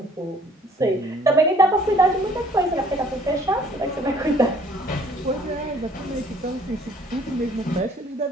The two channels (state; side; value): normal; both; correlation 0.57